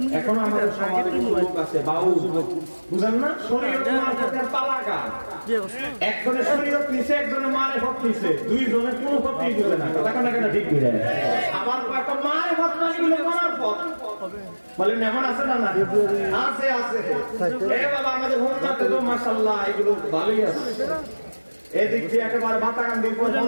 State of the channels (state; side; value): inverted; both; correlation -1.00